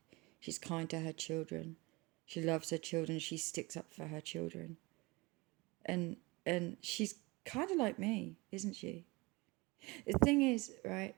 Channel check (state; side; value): quieter; left; 24.4 dB